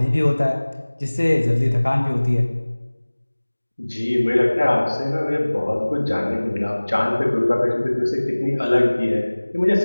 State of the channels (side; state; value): both; inverted; correlation -1.00